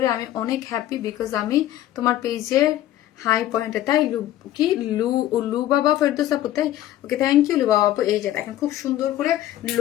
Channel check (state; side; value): quieter; right; 13.3 dB